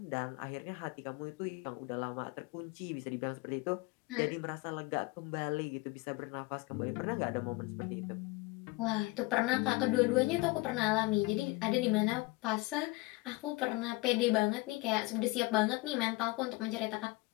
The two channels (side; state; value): right; quieter; 23.1 dB